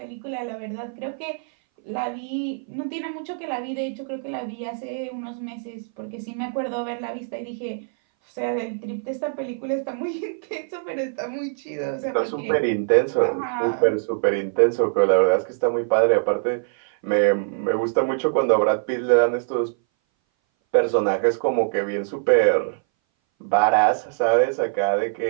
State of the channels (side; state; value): left; silent; 60 dB below the other